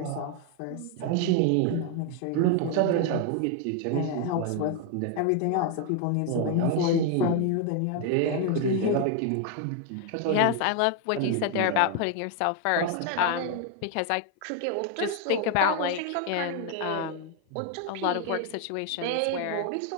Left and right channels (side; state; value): both; different; correlation 0.01